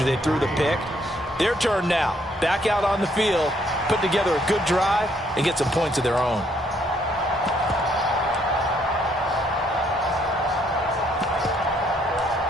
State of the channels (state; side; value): normal; both; correlation 0.69